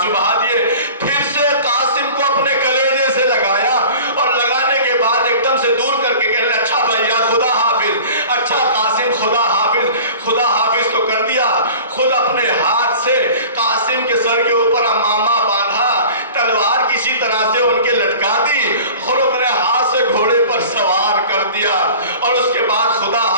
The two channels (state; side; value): inverted; both; correlation -0.41